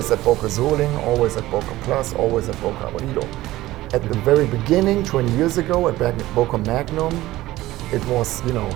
at Boker Soling, always at Boker Plus, always at Boker Abolido. At the very beginning, 20 years ago, at Boker Magnum, it was,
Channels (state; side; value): quieter; left; 16.8 dB